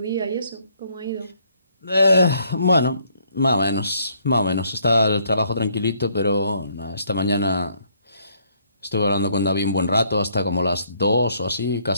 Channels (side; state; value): both; inverted; correlation -0.68